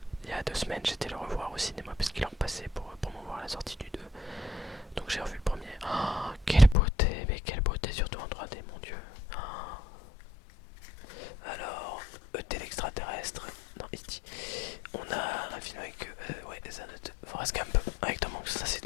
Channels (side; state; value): right; drops out; at 6.8 s